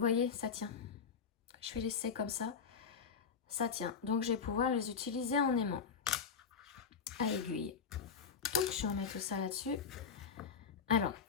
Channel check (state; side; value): quieter; right; 6.2 dB